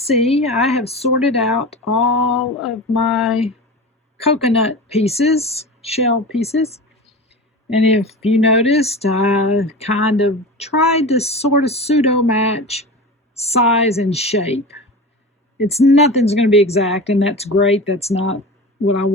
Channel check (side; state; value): both; normal; correlation 0.30